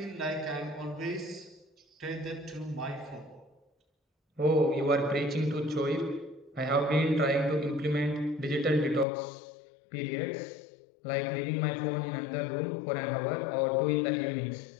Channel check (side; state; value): right; drops out; at 9.1 s